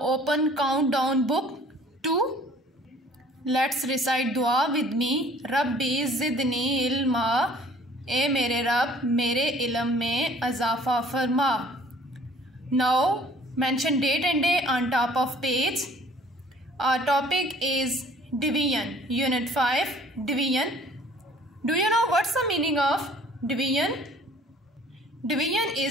open countdown book 2. Let's recite dua with me. Rabbi zidni ilma. ए मेरे रब मेरे इल्म में अज़ाफ़ा फरमा. Now mention date and day on top of page. Our topic is division. Unit 5, division. Do you know what's the meaning of division? Division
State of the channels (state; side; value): normal; both; correlation 0.53